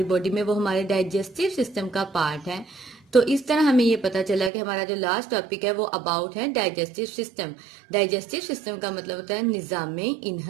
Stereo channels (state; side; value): drops out; left; at 4.5 s